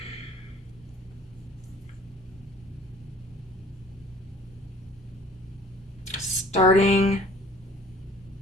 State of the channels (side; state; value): both; normal; correlation 0.51